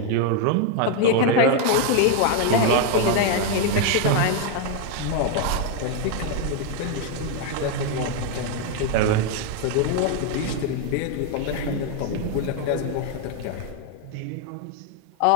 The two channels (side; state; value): both; different; correlation 0.01